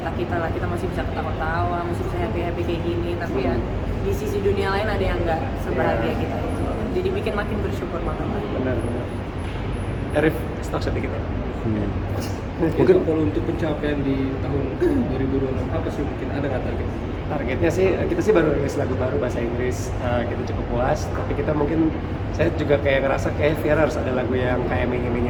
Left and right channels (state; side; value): identical; both; correlation 1.00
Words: lah. Kita masih bisa ketawa-tawa, masih bisa happy kayak gini, tapi ya di sisi dunia lain ada yang nggak sebahagia kita itu. Jadi bikin makin bersyukur banget. Benar. Arif, stok sedikit ya. Mungkin kalau untuk pencapaian di tahun 2026 apa sih, mungkin ada nggak target? Targetnya sih, kita sih baru rilis lagu baru bahasa Inggris, kita cukup puas. Tapi kita mungkin, saya juga kayak ngerasa kayak Viera harus ada lagu yang kayak